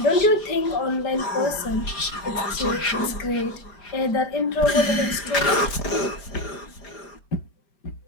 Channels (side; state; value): right; late; 4.9 ms